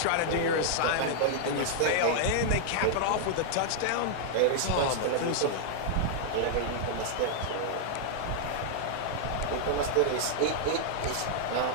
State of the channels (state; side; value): different; both; correlation -0.01